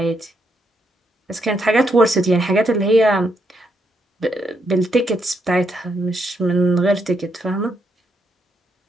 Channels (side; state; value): both; normal; correlation 0.78